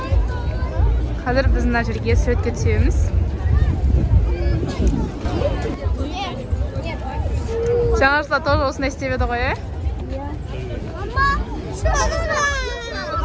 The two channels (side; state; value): both; identical; correlation 1.00